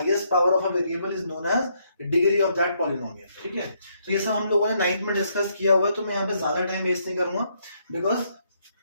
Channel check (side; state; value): both; inverted; correlation -0.73